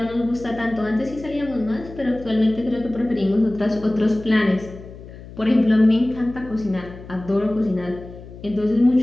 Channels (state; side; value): noise; left; hum, 16 dB below the sound